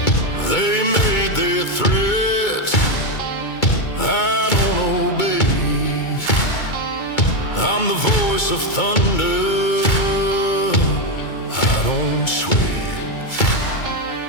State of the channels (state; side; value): late; right; 2.2 ms